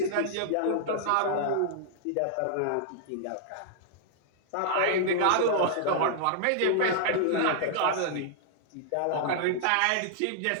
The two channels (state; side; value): different; both; correlation -0.01